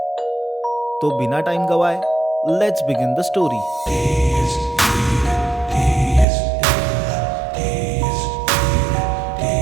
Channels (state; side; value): drops out; left; at 6.2 s